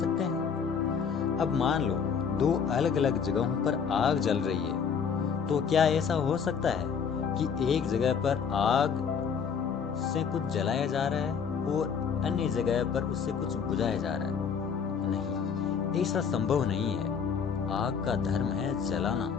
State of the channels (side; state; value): right; quieter; 6.7 dB